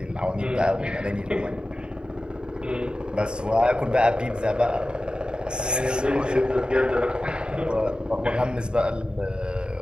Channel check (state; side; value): late; left; 0.050 ms